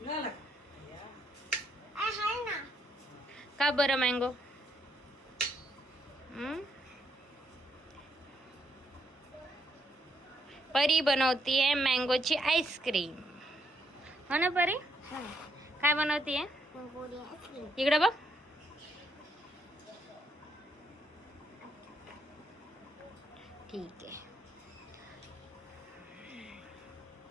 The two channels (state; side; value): normal; both; correlation 0.75